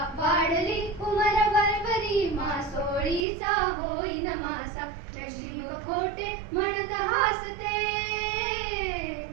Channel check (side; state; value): left; drops out; at 3.2 s